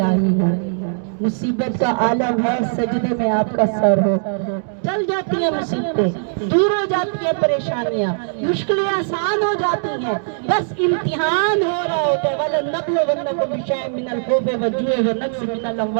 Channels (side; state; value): left; silent; digital silence